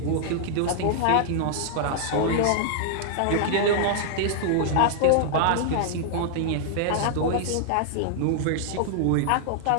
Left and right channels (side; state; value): both; different; correlation -0.01